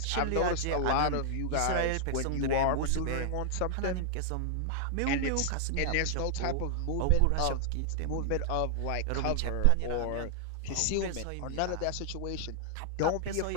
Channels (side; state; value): both; different; correlation -0.01